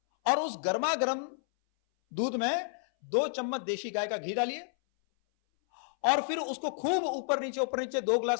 और उस गर्मा गर्म दूध में 2 चम्मच देशी गाय का घी डालिए, और फिर उसको खूब ऊपर नीचे 2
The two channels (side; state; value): right; silent; 57 dB below the other